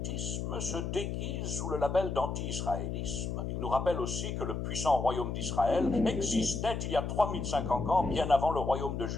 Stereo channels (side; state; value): left; noise; hum, 3 dB below the sound